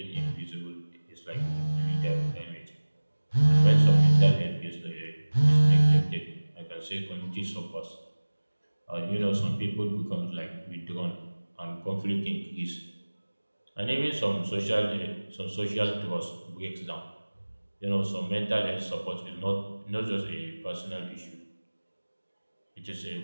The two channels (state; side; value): inverted; both; correlation -1.00